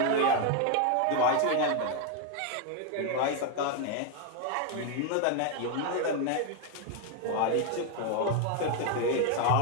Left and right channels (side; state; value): both; different; correlation 0.01